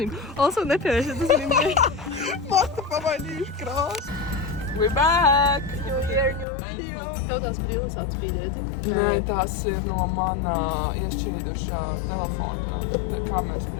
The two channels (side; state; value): right; drops out; at 6.5 s